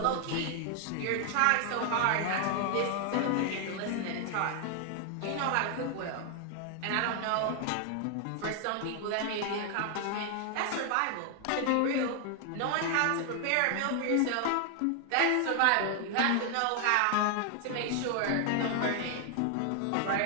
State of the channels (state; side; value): different; both; correlation 0.00